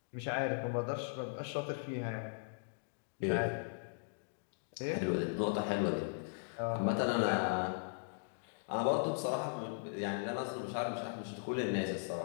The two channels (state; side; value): silent; right; digital silence